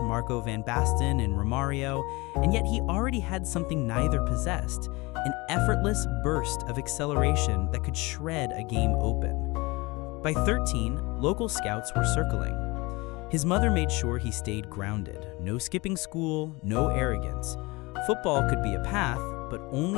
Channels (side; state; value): right; quieter; 24.1 dB